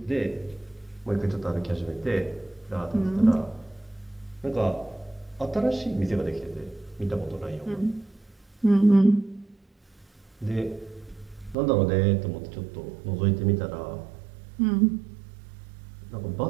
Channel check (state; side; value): drops out; left; at 11.6 s